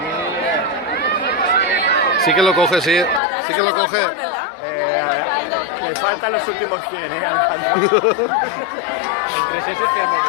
Sí que lo coge, sí. Sí que lo coge. Le faltan los últimos 100, Alejandro. Entre esos que vamos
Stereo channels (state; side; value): drops out; right; at 3.2 s